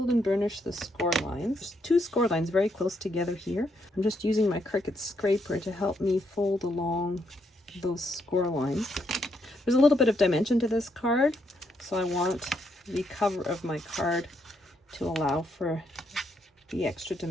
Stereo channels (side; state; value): both; normal; correlation 0.76